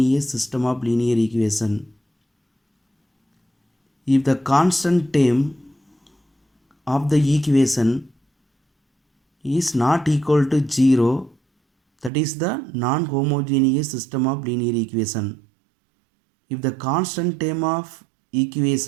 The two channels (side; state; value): left; drops out; at 12.1 s